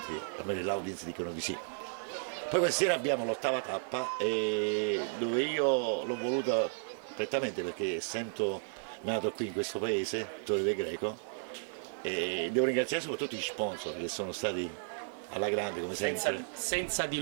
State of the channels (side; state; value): left; silent; digital silence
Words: almeno l'audience dicono di sì. Poi questa sera abbiamo l'8ª tappa dove io l'ho voluta prettamente perché essendo nato qui in questo paese, Torre del Greco, e devo ringraziare soprattutto gli sponsor che sono stati alla grande come sempre. Senza di